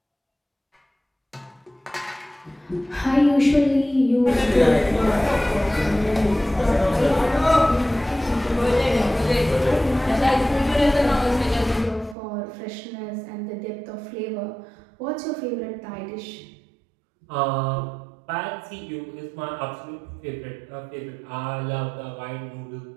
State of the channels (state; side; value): drops out; left; at 12.2 s